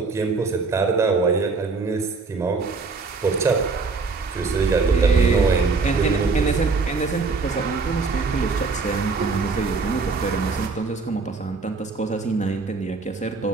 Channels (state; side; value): quieter; left; 4.3 dB